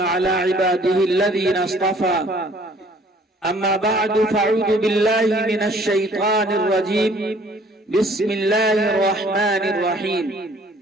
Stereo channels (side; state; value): both; normal; correlation 0.57